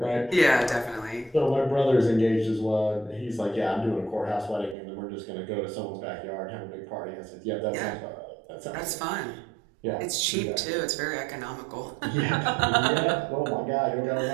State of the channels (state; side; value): drops out; left; at 4.8 s